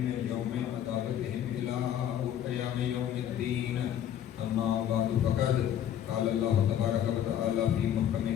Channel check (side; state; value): right; quieter; 10.3 dB